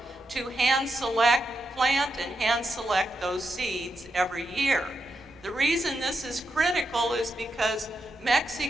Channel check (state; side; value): normal; both; correlation 0.84